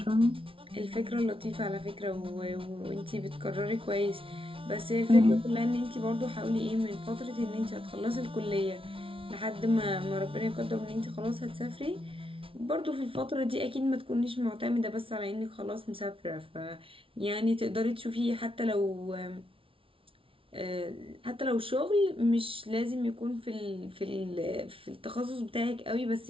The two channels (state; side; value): late; left; 0.26 ms